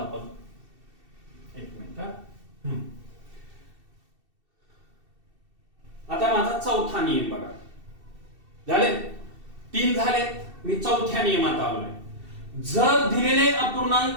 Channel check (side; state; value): left; late; 2.7 ms